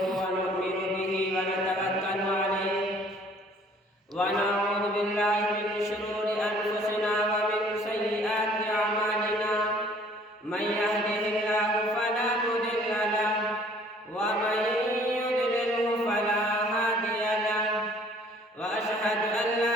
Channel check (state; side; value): normal; both; correlation 0.56